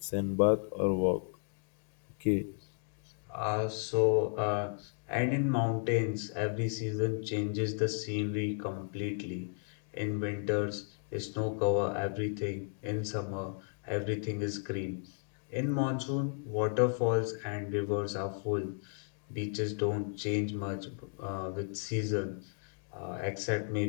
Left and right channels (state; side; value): silent; right; 55 dB below the other